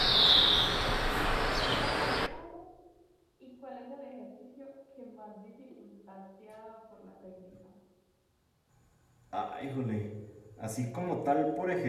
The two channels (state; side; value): identical; both; correlation 1.00